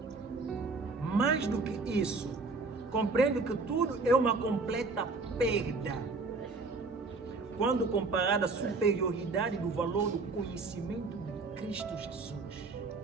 Mais do que isso, compreendo que tudo é uma completa perda quando comparada à superioridade do valor do conhecimento de Cristo Jesus.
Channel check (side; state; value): left; quieter; 3.9 dB